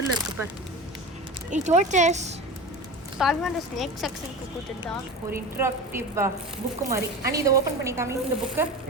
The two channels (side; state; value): both; normal; correlation 0.29